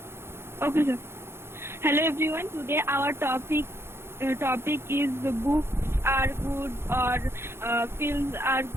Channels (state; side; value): late; left; 0.12 ms